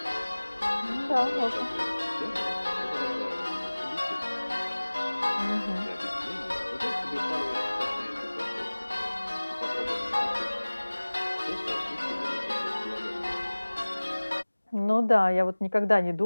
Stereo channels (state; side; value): inverted; both; correlation -1.00